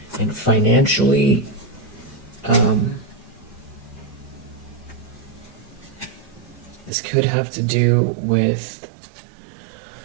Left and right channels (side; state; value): left; drops out; at 6.9 s